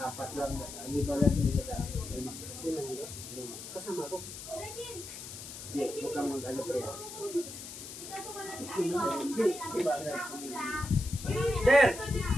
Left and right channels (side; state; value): left; noise; hiss, 11 dB below the sound